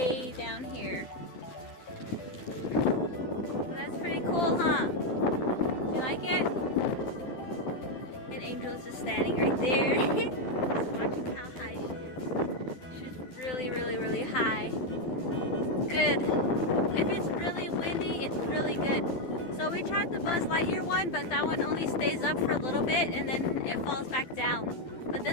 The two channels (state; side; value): late; right; 12 ms